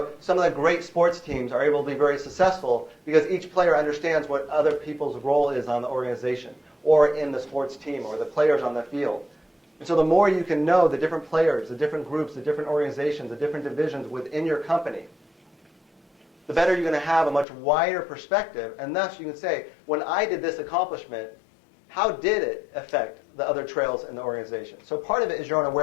some of the great sports teams are able to be very successful because each player understands what other people's role is on the organization or in the sports team or the players on the field. And so the more you can know the different players, the different groups, the different organizations, the different divisions within your company, the better you're going to have a much wider perspective. And thus you can say, when I did this accomplishment, how did it affect the other trails in the organization? So part of it is your own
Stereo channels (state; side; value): drops out; right; at 17.4 s